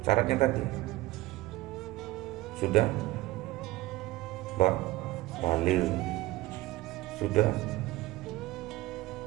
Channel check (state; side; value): quieter; left; 18.1 dB